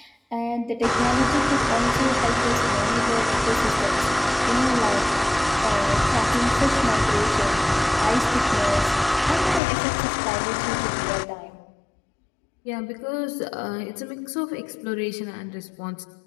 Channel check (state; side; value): drops out; right; at 9.6 s